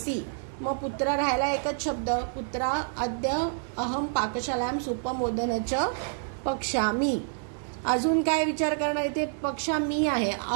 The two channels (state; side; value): silent; left; 59 dB below the other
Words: मग पुत्र राहिला एकच शब्द, पुत्रा अद्य अहम पाकशालायाम सुपमोदनच पक्षामी. अजून काय विचार करणार, इथे पक्षामी आहे,